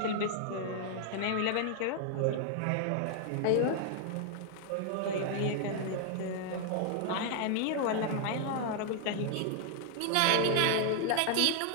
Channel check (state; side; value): different; both; correlation 0.00